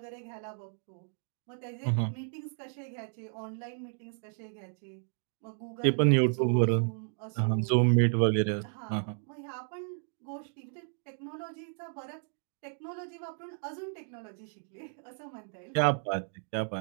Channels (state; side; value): silent; left; 56 dB below the other